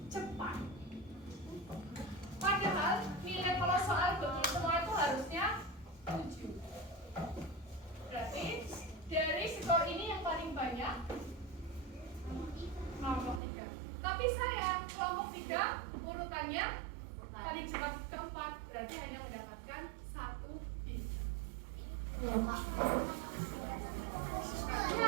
cepat. Padahal nilai kalau soal betul semua itu harusnya 7. Berarti dari skor ini yang paling banyak kelompok 3. Tapi sayang, kelompok 3 urutannya paling cepat keempat, berarti hanya mendapatkan 1 bintang.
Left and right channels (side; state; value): left; drops out; at 13.4 s